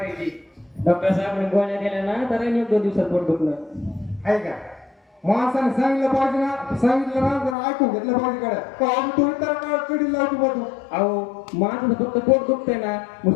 डॉक्टर साहेब गोळ्या दिल्या ना तर राहिली 2 दिवसात पोट दुखलं. आहे का? माणसाने सांगितलं पाहिजे ना, सांगितलं ना जर ऐकून घेतलं पाहिजे गाड्या. का तू इतर कडी लावतो बघ तू. अहो माझं फक्त पोट दुखतंय ना,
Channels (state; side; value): drops out; right; at 7.6 s